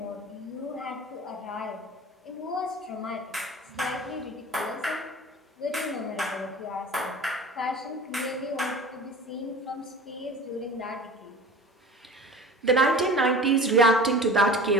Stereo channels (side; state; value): both; normal; correlation 0.39